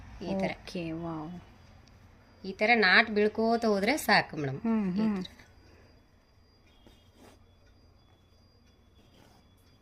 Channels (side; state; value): both; identical; correlation 1.00